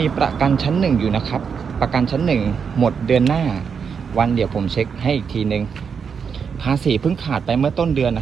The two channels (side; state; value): left; quieter; 6.4 dB